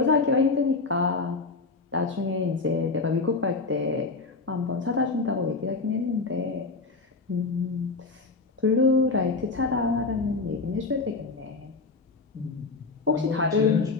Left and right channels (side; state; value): right; quieter; 3.9 dB